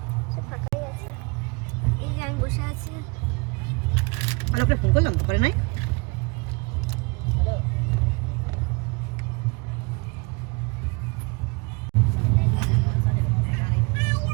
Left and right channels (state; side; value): quieter; left; 29.3 dB